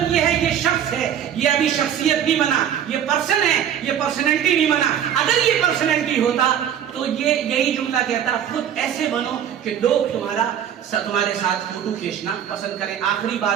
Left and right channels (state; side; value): quieter; left; 9.4 dB